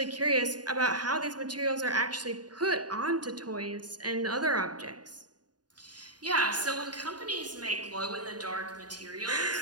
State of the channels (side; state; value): left; late; 0.69 ms